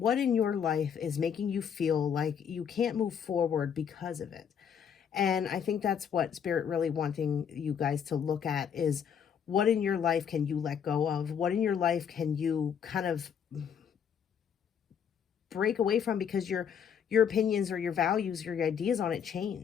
in your life is making you feel like you can't move forward because of it? And I think that's what Spirit really wanting you guys to look at is, what in your life can you let go of? What in your life can you kind of break away from because your opinions or your values or your ideas on it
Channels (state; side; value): quieter; right; 7.8 dB